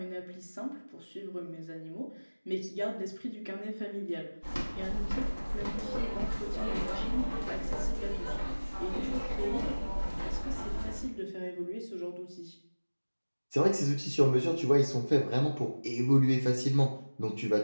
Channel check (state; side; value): inverted; both; correlation -1.00